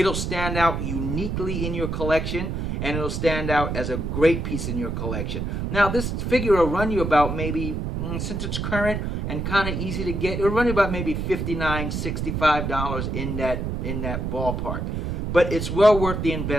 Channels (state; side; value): noise; right; rumble, 2 dB below the sound